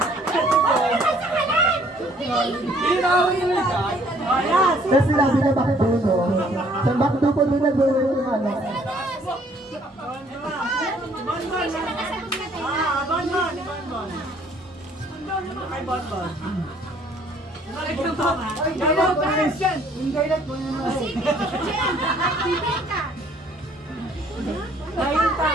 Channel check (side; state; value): both; normal; correlation 0.61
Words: Tapos sinabi na Bakduno. Sa Bakdo po din nag-uwi yung ano.